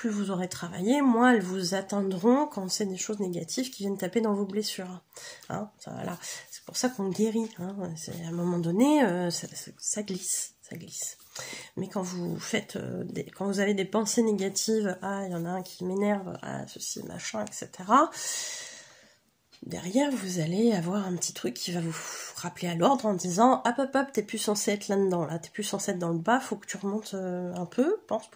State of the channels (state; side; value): identical; both; correlation 1.00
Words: vous aurez travaillé, moins elles vous atteindront quand c'est des choses négatives qui viennent taper dans vos blessures. Hein, voilà. C'est pour ça qu'on guérit. Hein. À un moment donné, ça glisse. Ça glisse. Mais quand vous faites quand vous avez des pensées négatives, ah il y en a un qui m'énerve, ah ceci, machin, etc. Derrière vous allez avoir un petit truc qui va vous rappeler à l'ordre en disant hop, t'es plus censé être là-dedans, là, t'es plus censé être dans le bas, faut que tu remontes un peu, pense